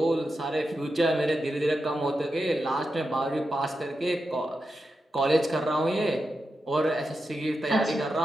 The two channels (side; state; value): both; normal; correlation 0.89